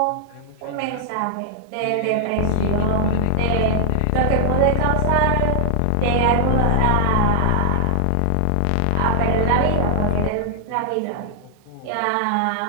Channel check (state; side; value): different; both; correlation -0.01